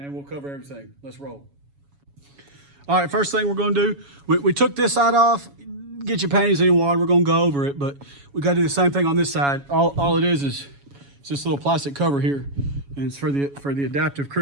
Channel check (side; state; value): left; late; 7.1 ms